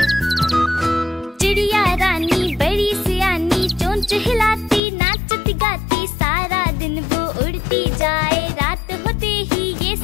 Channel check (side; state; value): right; drops out; at 4.8 s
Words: चिड़िया रानी बड़ी सियानी, चोंच हिलाती, नाचती गाती, सारा दिन वो उड़ती जाए, रात होते ही ये